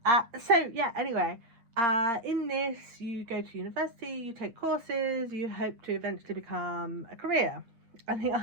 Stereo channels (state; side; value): late; left; 8.6 ms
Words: Anyway, in this you go to university, you take courses, you hope to eventually become a career. And the